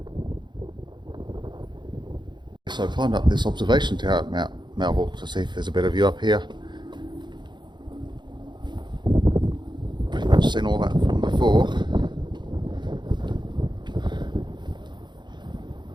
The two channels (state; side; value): late; left; 0.22 ms